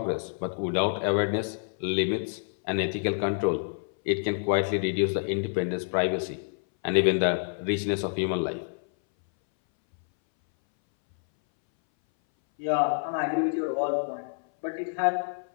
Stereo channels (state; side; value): silent; right; 60 dB below the other